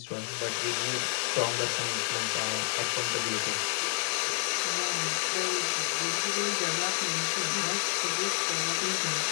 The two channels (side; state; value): right; silent; digital silence